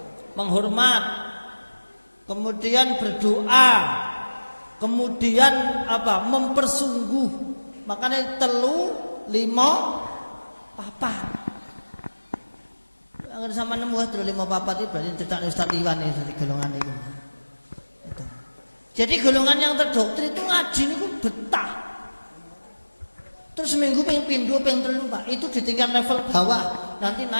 Menghormat. Kemudian berdoa. Kemudian apa? Mempersungguh. Makanya 3, 5, 4. Angger sama nemu 3, 5, 4 itu berarti cetak Ustaz Iwan iki golongan itu. Jadi golongan yang terdoktrin itu ngaji niku betah. Terus seminggu pengen pindho pengen 3, Pak. Itu di tingkat level bawah. Nanti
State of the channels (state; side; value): inverted; both; correlation -1.00